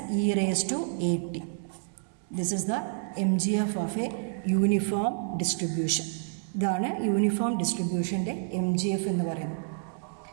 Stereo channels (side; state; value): left; silent; digital silence